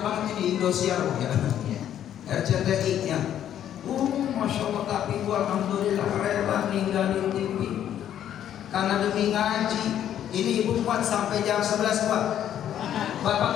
banget ini, Indosiar ya, RCTI nya. Masya Allah, tapi gua alhamdulillah rela ninggalin TV karena demi ngaji. Ini ibu kuat sampai jam 11 kuat.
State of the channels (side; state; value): right; quieter; 10.5 dB